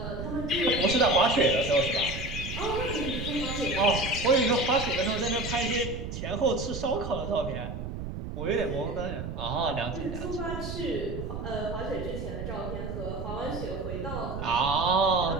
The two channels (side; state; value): right; noise; rumble, 7 dB below the sound